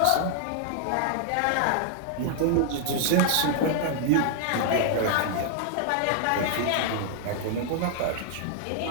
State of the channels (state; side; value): different; both; correlation -0.01